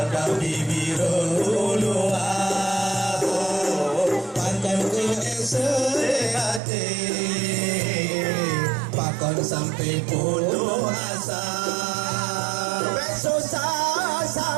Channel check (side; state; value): left; drops out; at 6.6 s